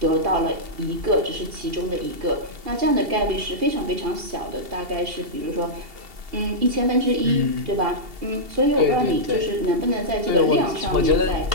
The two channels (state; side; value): late; left; 2.7 ms